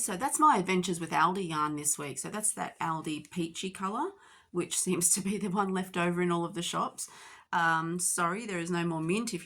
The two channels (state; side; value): identical; both; correlation 1.00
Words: that's my adventures with Aldi yarn this week. So that's that Aldi peachy colour, which seems to be the one left over in all of the shops. Sorry, there is no more mint if